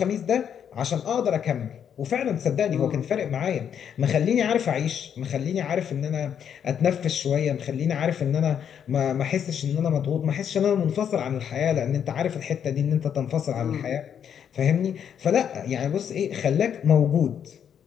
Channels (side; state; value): right; quieter; 8.4 dB